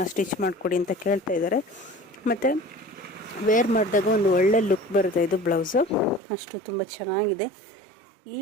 ಸ್ಟಿಚ್ ಮಾಡಿಕೊಡಿ ಅಂತ ಕೇಳ್ತಾ ಇದ್ದಾರೆ. ಮತ್ತು ವೇರ್ ಮಾಡಿದಾಗ ಒಂದು ಒಳ್ಳೆ ಲುಕ್ ಬರುತ್ತೆ. ಇದು ಬ್ಲೌಸು ಅಷ್ಟು ತುಂಬ ಚೆನ್ನಾಗಿದೆ. ಈ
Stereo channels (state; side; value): drops out; left; at 6.2 s